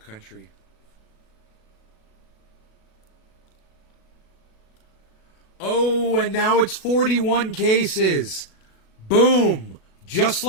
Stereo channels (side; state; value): right; late; 37 ms